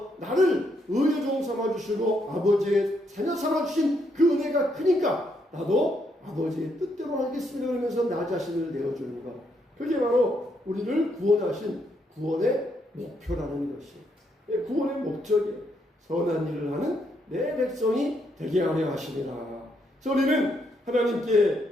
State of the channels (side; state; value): both; normal; correlation 0.76